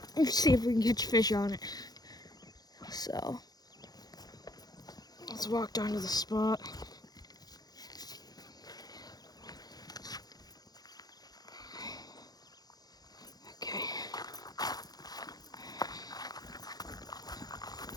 let's see if we can catch fish on it. So, let's walk down to the spot. Okay.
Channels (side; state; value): right; late; 0.19 ms